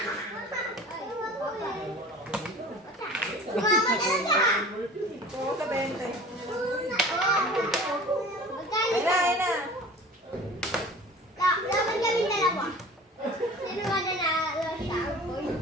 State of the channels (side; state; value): both; normal; correlation 0.42